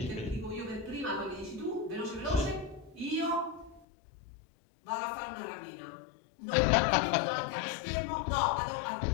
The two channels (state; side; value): drops out; right; at 3.9 s